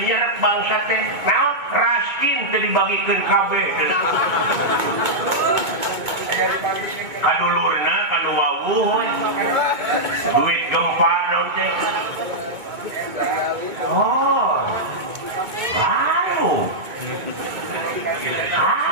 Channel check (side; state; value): left; late; 2.2 ms